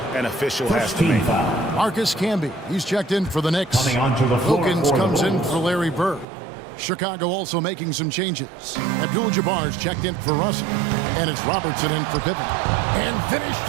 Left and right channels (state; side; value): drops out; left; at 6.2 s